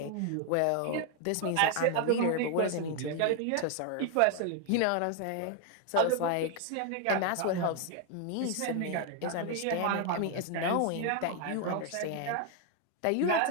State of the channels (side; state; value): both; different; correlation 0.01